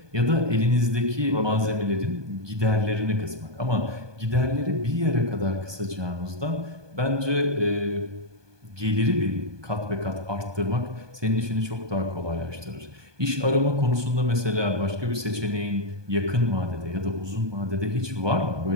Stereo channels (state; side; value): late; left; 1.2 ms